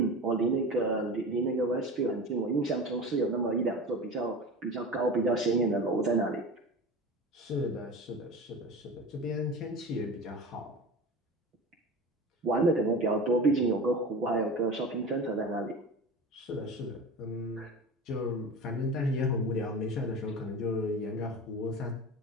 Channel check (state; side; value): normal; both; correlation 0.32